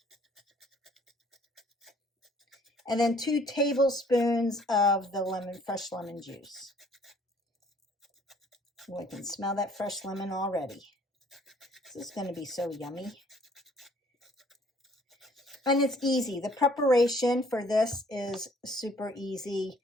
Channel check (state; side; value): normal; both; correlation 0.59